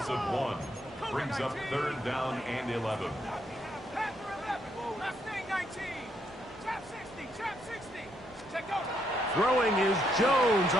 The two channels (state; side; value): normal; both; correlation 0.75